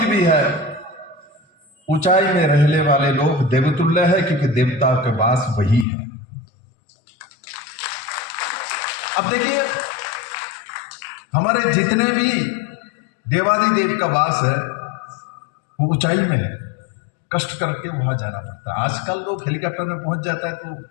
भी है। ऊंचाई में रहने वाले लोग देवतुल्य है क्योंकि देवता के वास वही है। अब देखिए, हमारे जितने भी देवादिदेव का वास है वो ऊंचाई में है, कष्ट करके वहां जाना पड़ता है। आजकल लोग हेलीकॉप्टर में पहुंच जाता है तो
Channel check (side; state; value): right; drops out; at 5.9 s